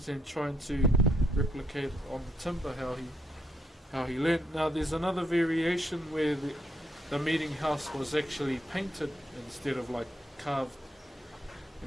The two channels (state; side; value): normal; both; correlation 0.75